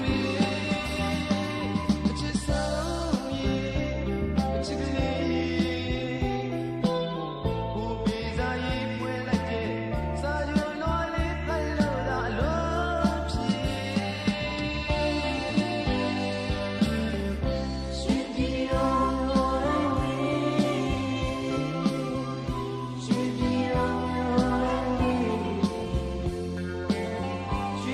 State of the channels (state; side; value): identical; both; correlation 1.00